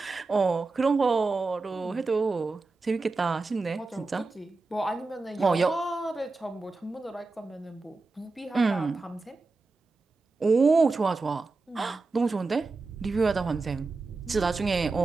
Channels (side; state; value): left; quieter; 3.7 dB